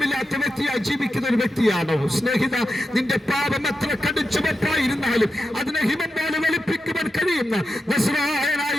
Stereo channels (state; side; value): normal; both; correlation 0.89